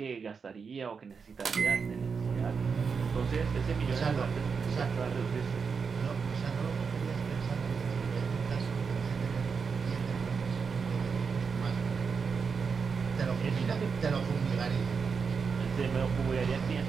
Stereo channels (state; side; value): quieter; left; 5.6 dB